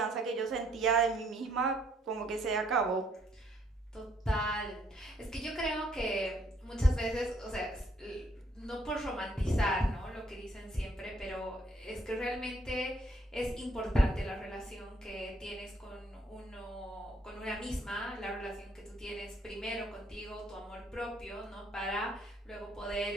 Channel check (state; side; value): normal; both; correlation 0.68